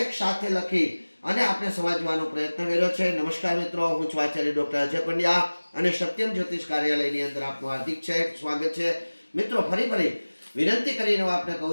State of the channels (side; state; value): both; inverted; correlation -1.00